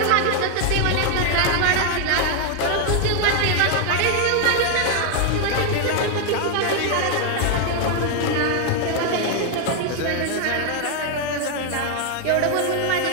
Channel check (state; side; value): different; both; correlation 0.00